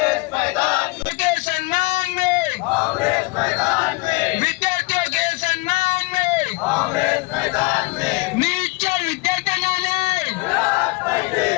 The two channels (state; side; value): quieter; right; 25.9 dB